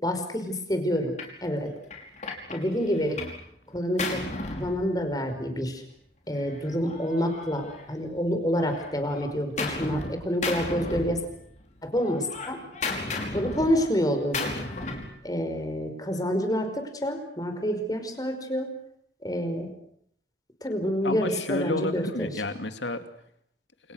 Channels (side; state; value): both; normal; correlation 0.62